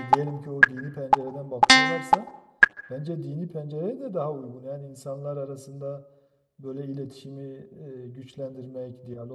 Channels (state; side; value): identical; both; correlation 1.00